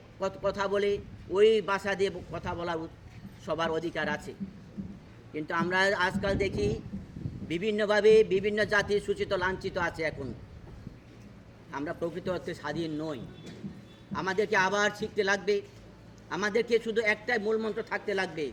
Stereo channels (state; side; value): identical; both; correlation 1.00